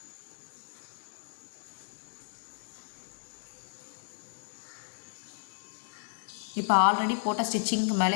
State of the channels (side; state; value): right; silent; digital silence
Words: இப்போ ஆல்ரெடி போட்ட ஸ்டிச்சிங்க்கு